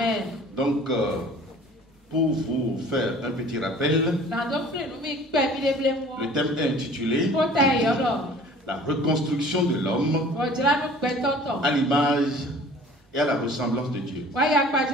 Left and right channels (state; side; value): normal; both; correlation 0.47